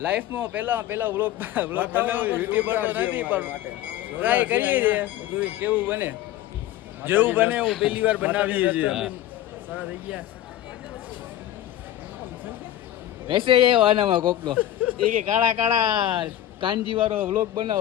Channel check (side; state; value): right; quieter; 12.9 dB